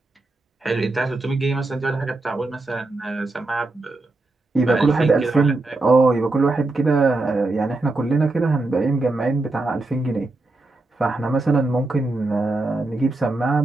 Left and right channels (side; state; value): left; quieter; 3.1 dB